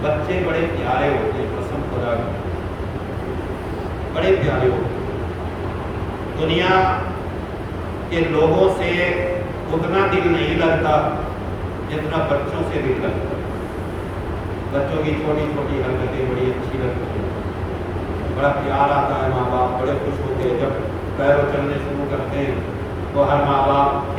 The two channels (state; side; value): identical; both; correlation 1.00